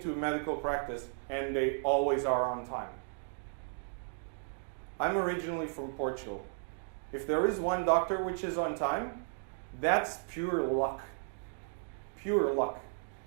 a medical practice and they always are on time? I'm originally from Portugal. If there is one doctor which is on time, that's pure luck. Pure luck.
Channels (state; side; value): silent; left; digital silence